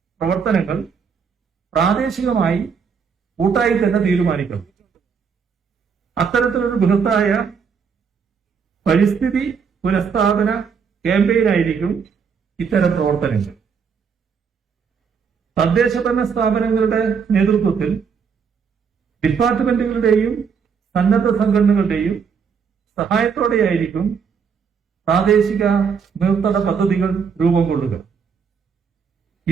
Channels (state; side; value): quieter; left; 6.3 dB